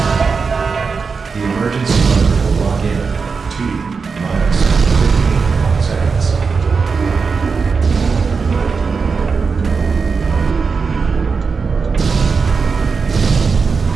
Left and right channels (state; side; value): quieter; left; 5.1 dB